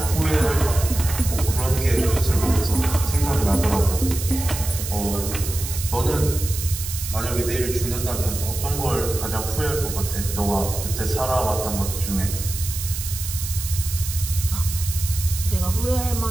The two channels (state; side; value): noise; right; hiss, 7 dB below the sound